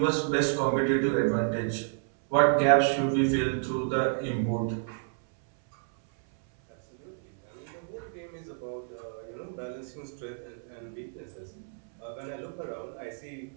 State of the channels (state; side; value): silent; left; 58 dB below the other